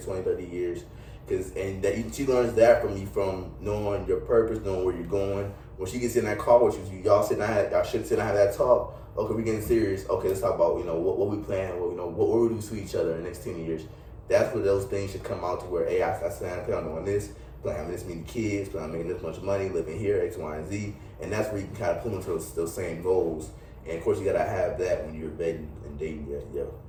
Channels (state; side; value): identical; both; correlation 1.00